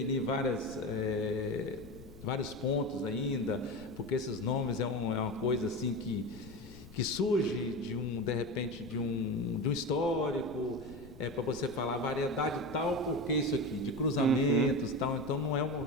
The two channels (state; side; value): noise; left; rumble, 17 dB below the sound